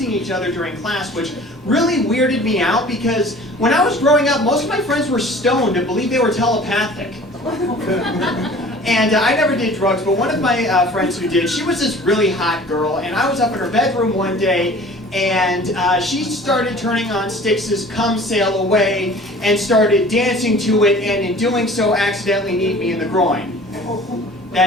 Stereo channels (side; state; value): both; normal; correlation 0.46